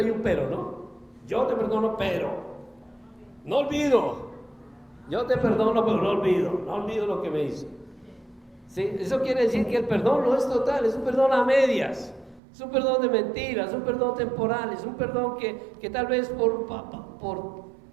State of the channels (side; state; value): left; drops out; at 12.4 s